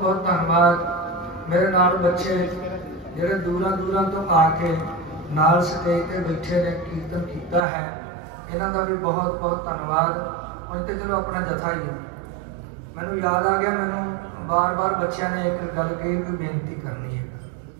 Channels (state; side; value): drops out; left; at 7.7 s